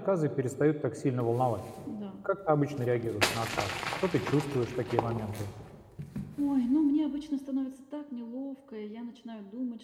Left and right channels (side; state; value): both; identical; correlation 1.00